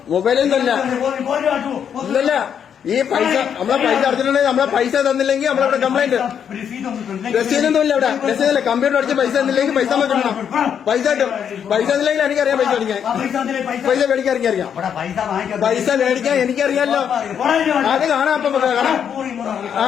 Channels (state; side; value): quieter; right; 8.2 dB